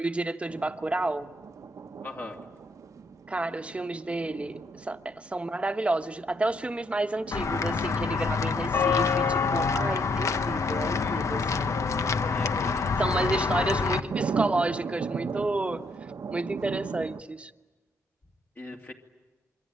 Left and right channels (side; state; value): both; normal; correlation 0.71